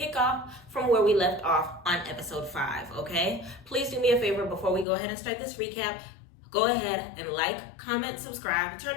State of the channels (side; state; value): right; drops out; at 4.9 s